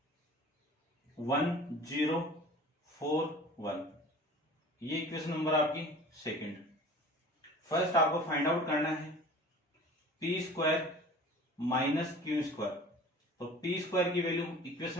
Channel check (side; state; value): both; normal; correlation 0.43